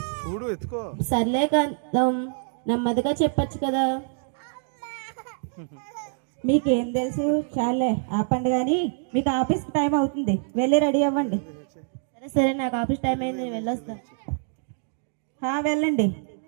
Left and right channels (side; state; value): left; silent; digital silence